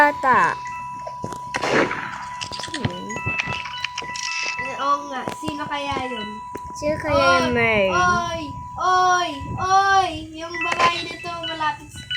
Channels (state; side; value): identical; both; correlation 1.00